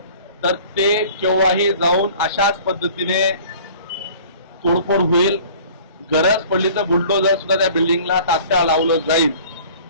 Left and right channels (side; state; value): both; inverted; correlation -0.48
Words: तर ते केव्हाही जाऊन अशाच पद्धतीने तोडफोड होईल. गरज पडली तर बुलडोजर सुद्धा त्या बिल्डिंगला तात्काळ लावलं जाईल.